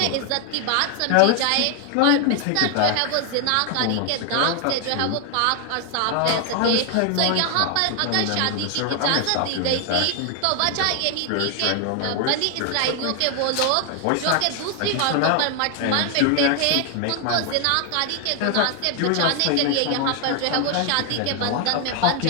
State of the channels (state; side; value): different; both; correlation 0.00